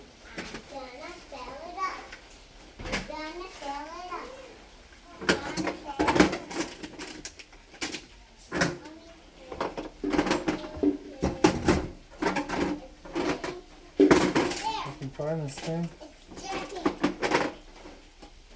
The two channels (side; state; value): both; identical; correlation 1.00